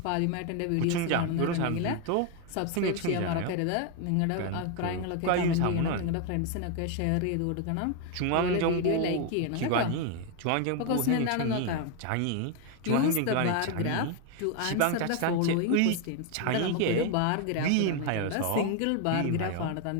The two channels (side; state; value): both; different; correlation 0.01